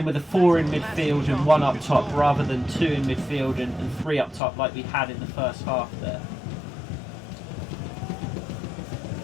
with a 4 in midfield and 1 up top rather than 2 in midfield and 3 up top like we had in the first half there.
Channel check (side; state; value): right; drops out; at 4.4 s